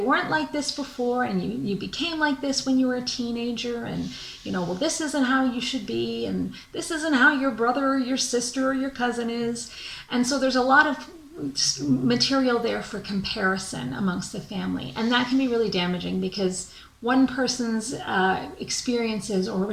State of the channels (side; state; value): both; identical; correlation 1.00